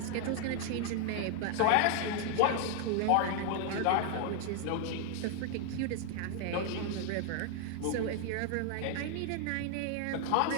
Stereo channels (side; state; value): both; different; correlation 0.00